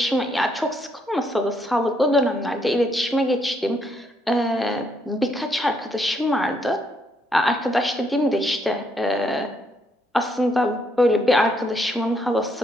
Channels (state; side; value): normal; both; correlation 0.73